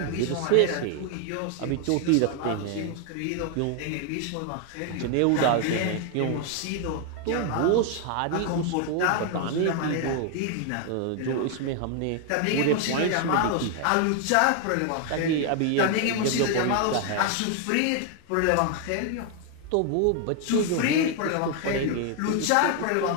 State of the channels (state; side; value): different; both; correlation 0.00